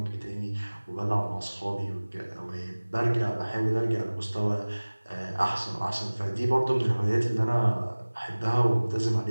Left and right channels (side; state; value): both; inverted; correlation -1.00